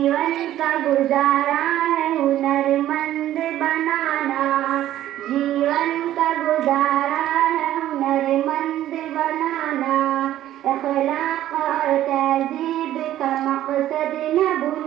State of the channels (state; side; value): quieter; left; 13.0 dB